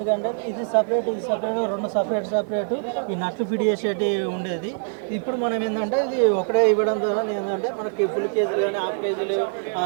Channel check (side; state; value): left; silent; digital silence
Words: కంటే ఇది సపరేట్ 2 సపరేట్ ఈ నట్లు ఫిట్ చేసేటి ఉండేది. ఇప్పుడు మనం ఏంటంటే ఇది ఒకటే ఇవ్వడం ద్వారా ఏంటంటే మనకి ఫుల్ కేజీలు కానీ హాఫ్ కేజీలు